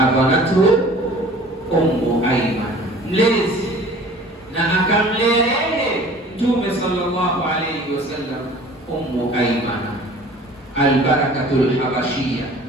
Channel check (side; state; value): both; normal; correlation 0.47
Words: Ummu Aiman, mlezi na akamlea yeye Mtume sallallahu alayhi wasallam, Ummu Aiman al-Barakatul Habashiyya.